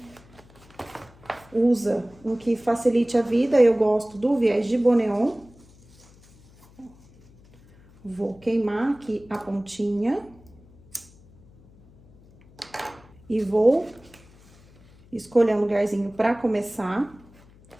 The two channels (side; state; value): left; noise; hum, 26 dB below the sound